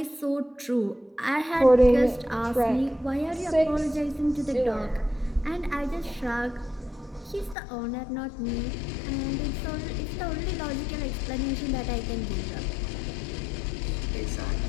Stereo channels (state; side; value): drops out; right; at 7.6 s